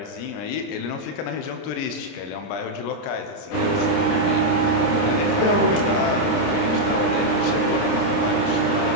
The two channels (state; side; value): late; right; 30 ms